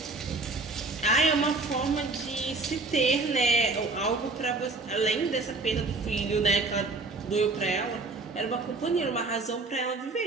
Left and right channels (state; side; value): quieter; left; 3.5 dB